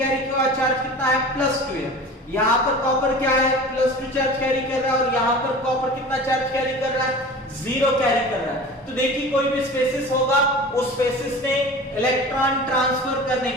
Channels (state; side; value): normal; both; correlation 0.37